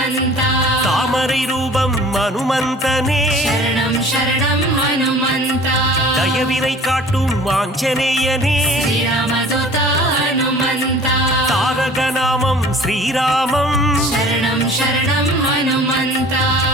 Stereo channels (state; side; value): normal; both; correlation 0.47